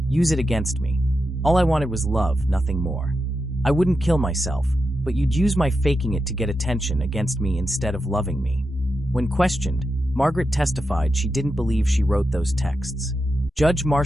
Use it against me. All I wanted was love, nothing more. I wouldn't kill myself, but you'd use my faking it to get attention against me instead of loving me." When questioned, Margaret testified she didn't believe she wrote those texts. Judge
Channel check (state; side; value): normal; both; correlation 0.88